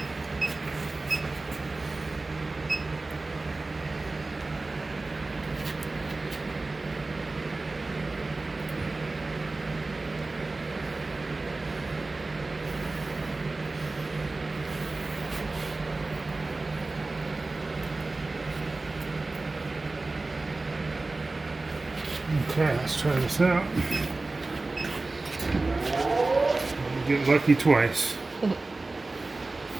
Okay, let's try this out. Get lucky twice.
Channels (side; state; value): left; quieter; 3.3 dB